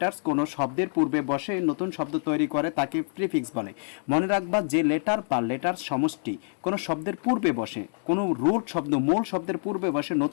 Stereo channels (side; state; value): right; silent; 60 dB below the other